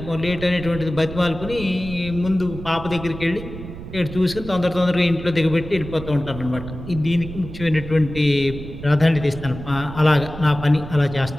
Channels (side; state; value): right; noise; rumble, 11 dB below the sound